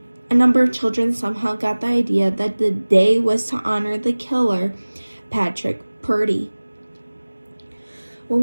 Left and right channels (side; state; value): both; inverted; correlation -1.00